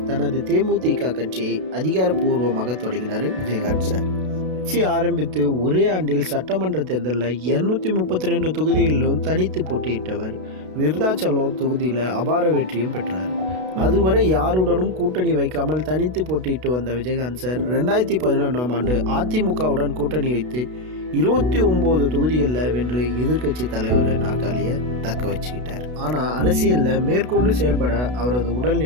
தனது தேமுதிக கட்சியை அதிகாரப்பூர்வமாக தொடங்கினார் விஜயகாந்த் சார். கட்சி ஆரம்பித்து ஒரே ஆண்டில் சட்டமன்ற தேர்தலில் 232 தொகுதிகளிலும் தனித்து போட்டியிட்டவர். விருதாச்சலம் தொகுதியில் அபார வெற்றியும் பெற்றார். அதுவரை யாருடனும் கூட்டணி வைக்காமல் தனித்து போட்டியிட்டு வந்த விஜயகாந்த் சார் 2011ஆம் ஆண்டு அதிமுகவுடன் கூட்டணி வைத்து 29 தொகுதிகளில் வென்று எதிர்க்கட்சி தலைவர் நாற்காலியை தக்க வச்சுக்கிட்டார். ஆனால் அரசியலில் மேற்கொண்டு செயல்பட அவரது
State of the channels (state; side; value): late; left; 32 ms